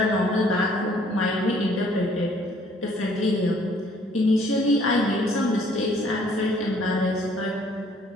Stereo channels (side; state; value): both; normal; correlation 0.60